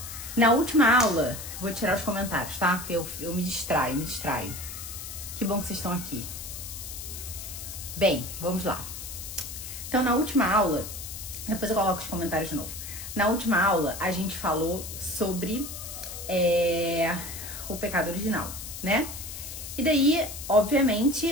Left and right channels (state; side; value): noise; left; hiss, 9 dB below the sound